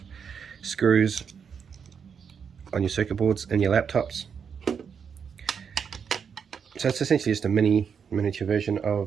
screws on your circuit boards and your laptops. So it's essentially just a miniature version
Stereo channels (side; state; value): left; quieter; 6.8 dB